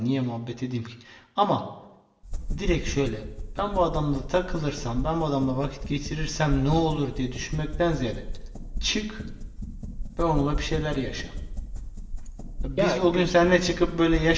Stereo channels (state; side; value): identical; both; correlation 1.00